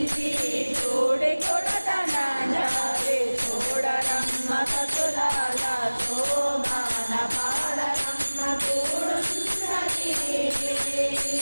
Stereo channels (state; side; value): inverted; both; correlation -1.00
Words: చూడి కొడతనాంజారి చూడరమ్మ సతులాల శోభాన పాడరమ్మ చూడున్నది